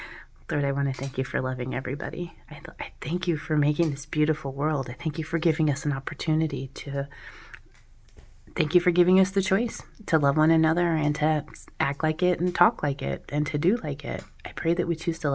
Lord, I want to thank you for loving everybody. I thank you for making this beautiful world. I thank you for giving us an opportunity to... Thank you for giving us the choice to love one another and to act like it and talk like it and to do like it. I pray that we choose to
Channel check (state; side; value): identical; both; correlation 1.00